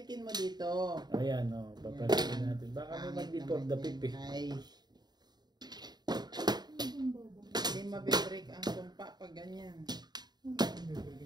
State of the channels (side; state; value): left; late; 0.20 ms